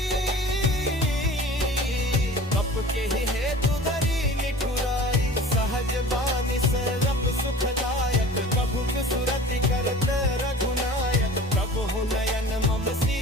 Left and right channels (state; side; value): normal; both; correlation 0.42